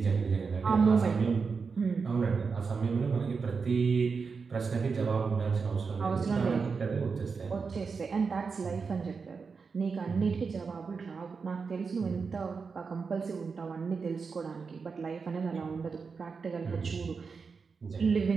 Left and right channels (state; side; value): quieter; left; 5.1 dB